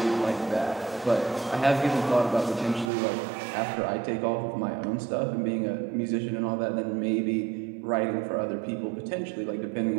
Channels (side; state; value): left; drops out; at 2.9 s